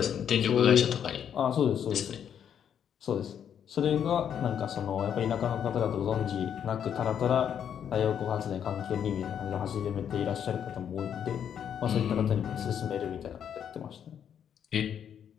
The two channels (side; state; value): right; quieter; 8.7 dB